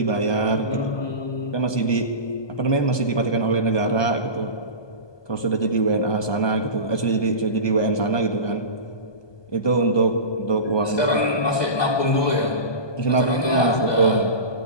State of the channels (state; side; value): late; right; 1.2 ms